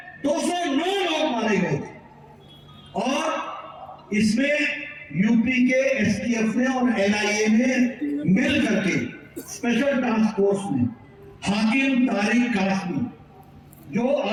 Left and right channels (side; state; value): both; identical; correlation 1.00